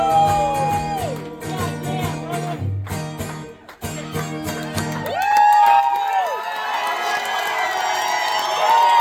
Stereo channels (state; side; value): identical; both; correlation 1.00